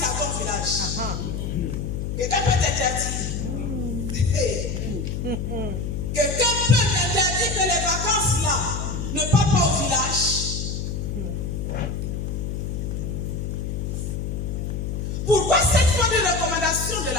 à ton village? Quelqu'un peut t'interdire? Quelqu'un peut t'interdire que les vacances là ne parlent pas au village? Pourquoi cette fois de recommandation de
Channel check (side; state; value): left; noise; hum, 3 dB below the sound